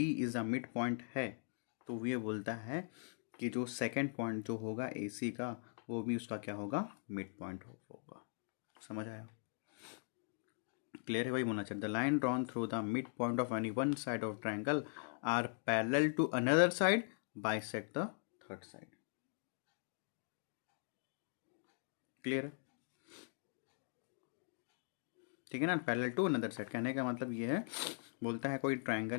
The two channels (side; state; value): right; silent; digital silence